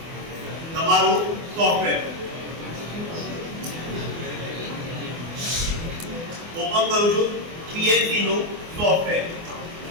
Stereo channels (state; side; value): late; left; 24 ms